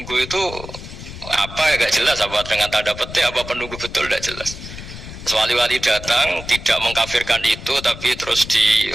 itu apa ya gak jelas, apa dengan tanda petik, apa penunggu betul gak jelas. Wali-wali datang tidak mengkafirkan itu, tapi terus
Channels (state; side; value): noise; left; rumble, 12 dB below the sound